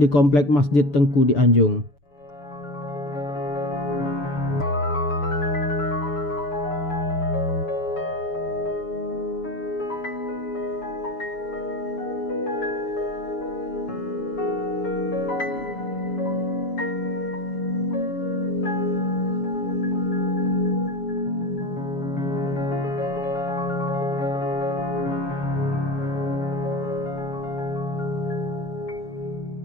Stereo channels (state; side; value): late; right; 7.0 ms